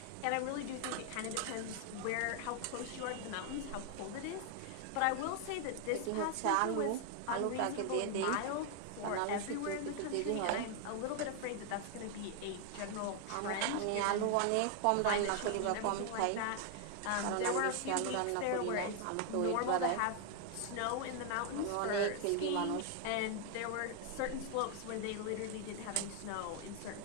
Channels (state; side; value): different; both; correlation 0.00